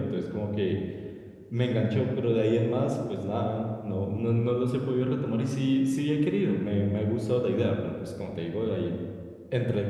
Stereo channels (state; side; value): identical; both; correlation 1.00